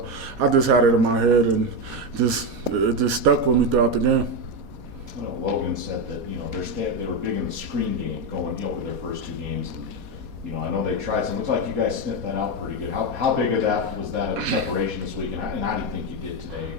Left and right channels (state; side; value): late; left; 4.2 ms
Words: I just had it in my head, and it just stuck with me throughout the game. Logan said that they were big in the screen game going over their first two games. I know they tried some. Looks like you guys sniffed that out pretty good. How big of that was that of preparation this week, and how do you think you did today